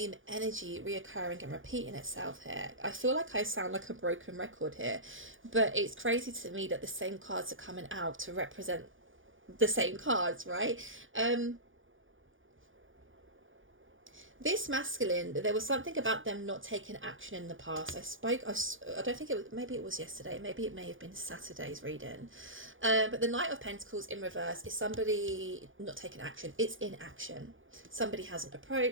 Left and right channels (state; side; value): late; left; 0.58 ms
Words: energy reoccurring and repeating itself here. I feel like I sound like a broken record here, but it's crazy to me that the same cards are coming out to represent the same cards, right? This masculine, there was something about them not taking action in the past. I don't think it was, maybe it was yesterday, maybe it may have been Saturday's reading. But the Knight of Pentacles in reverse is somebody not taking action. It's inaction. Somebody hasn't